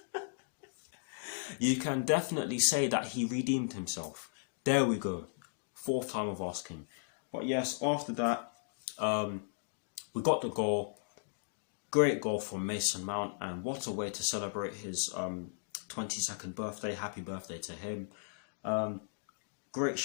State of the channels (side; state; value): right; silent; digital silence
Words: You can definitely say that he redeemed himself. There we go. Fourth time of asking. But yes, after that, we got the goal. Great goal from Mason Mount, and what a way to celebrate his 22nd birthday. Happy birthday to him. Great